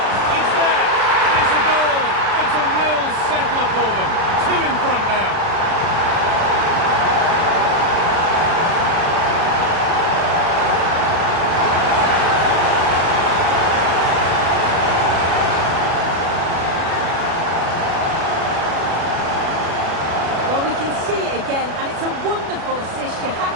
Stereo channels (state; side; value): late; left; 36 ms